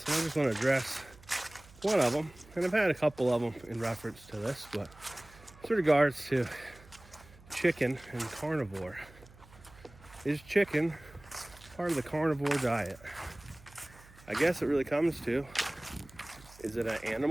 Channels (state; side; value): noise; right; hum, 23 dB below the sound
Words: and I just want to address one of them. And I've had a couple of them in reference to this, but with regards to chicken and carnivore. Is chicken part of the carnivore diet? I guess it really comes to, is it an